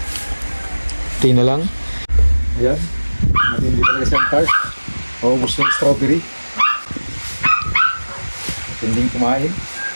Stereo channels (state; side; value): inverted; both; correlation -1.00